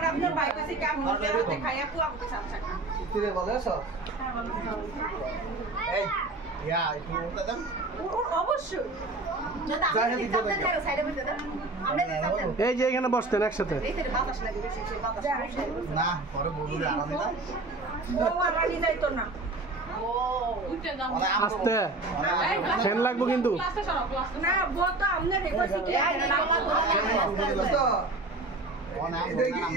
আপনার ভাই কাছে কাম নিজের হাতে খাইয়া পুয়া আমাকে সাথে কি রে বলে সব এই ইয়া একটু উঠতে দেন অবশ্যই যদি আপনি সামনে যাও সাইডে বসে দেন আমরা যে সামনে এই যে এখানে বসতেন একসাথে এই যে বাতাস লাগে বেশি বাতাস না পরে বলবো আলাদা না ও আমার যাইতো না ও আস্তে ফ্যান লাগবো কিন্তু না বত আমনে রেখেছি কি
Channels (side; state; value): left; quieter; 3.1 dB